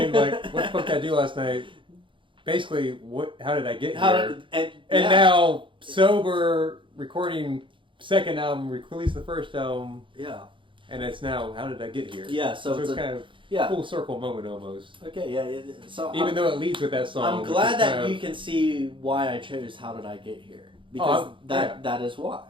like, what the fuck did I do last night? Basically, how did I get here? And now, sober, recording second album, released the first album. Yeah. And it's now, how did I get here? Yeah, so it's kind of a full circle moment almost. Okay, yeah. So even though it leads with that song. I'm glad that you can see why I chose How Did I Get Here. Because that is why.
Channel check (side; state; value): left; late; 0.24 ms